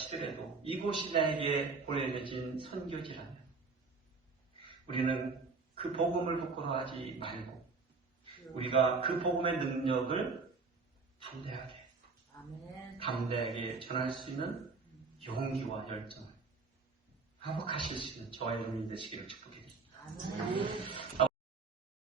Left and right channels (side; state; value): left; quieter; 4.4 dB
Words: 이곳이 나에게 보내진 선교지라면 우리는 그 복음을 부끄러워하지 말고 우리가 그 복음의 능력을 담대하게 전할 수 있는 용기와 열정을 회복하실 수 있는 저와 여러분이 되시기를 축복드립니다.